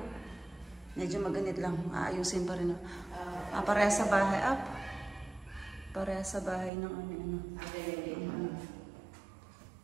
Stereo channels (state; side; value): drops out; left; at 6.7 s